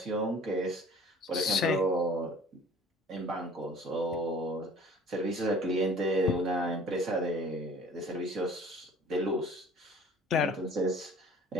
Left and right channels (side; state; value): both; normal; correlation 0.49